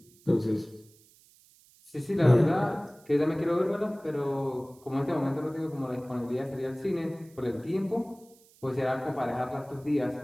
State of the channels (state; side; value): noise; right; hiss, 28 dB below the sound